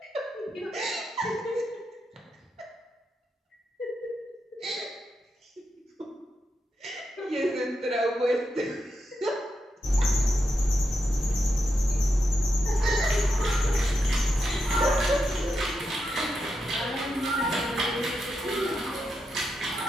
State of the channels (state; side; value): normal; both; correlation 0.86